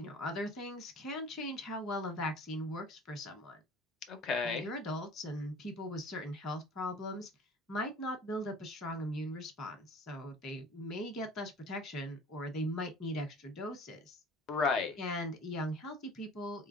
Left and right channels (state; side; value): normal; both; correlation 0.46